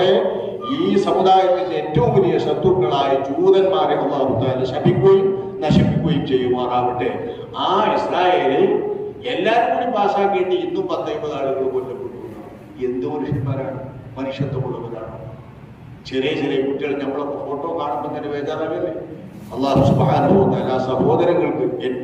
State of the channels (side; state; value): both; identical; correlation 1.00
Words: ഈ സമുദായത്തിന്റെ ഏറ്റവും വലിയ ശത്രുക്കളായ ജൂതന്മാരെ അള്ളാഹു താല ശപിക്കുകയും നശിപ്പിക്കുകയും ചെയ്യുമാറാവട്ടെ. ആ ഇസ്രായേലിൽ എല്ലാവരും കൂടി പാസ്സാക്കേണ്ടി ഇന്നും 10-50 ആളുകൾ കൊല്ലപ്പെട്ടു. എന്ത് മനുഷ്യന്മാരാണ്, മനുഷ്യത്വമുള്ളവരാണ്. ചെറിയ കുട്ടികൾ നമ്മളൊക്കെ ഫോട്ടോ കാണുമ്പോൾ തന്നെ ബേജാറാകല്ലേ. അല്ലാഹു സുബ്ഹാനഹു വ തആല സഹോദരങ്ങൾക്ക്